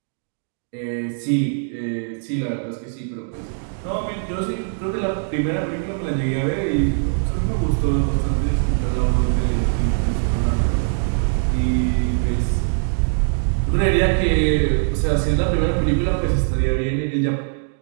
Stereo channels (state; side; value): silent; left; digital silence